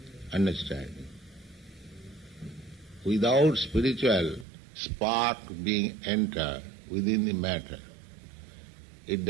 understanding. Without spiritual spark being entered within the matter, it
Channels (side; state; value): left; drops out; at 4.5 s